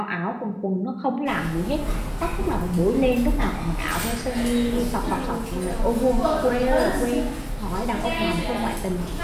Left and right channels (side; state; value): both; identical; correlation 1.00